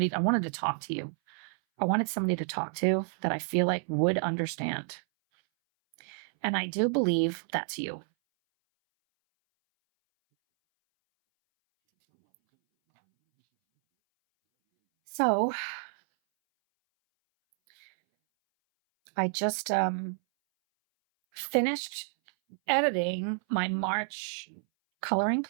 talk to you. I wanted somebody to talk to that I feel like would understand. And I do believe that's you. So I just finished editing my March coloring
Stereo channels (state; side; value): silent; left; 58 dB below the other